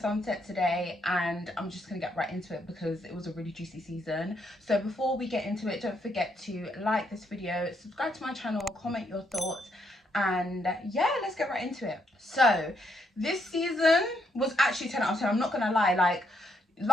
today, and I'm just going to get right into it because it was a really juicy season. So before we get into it, don't forget to like this video, subscribe to my channel, comment your thoughts, and yeah, let's get right into it. So this season was actually 10 out of 10. I'm not going to lie, like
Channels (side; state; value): both; normal; correlation 0.76